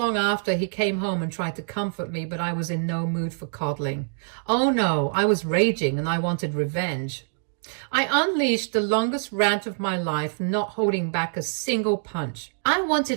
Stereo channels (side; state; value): left; silent; 62 dB below the other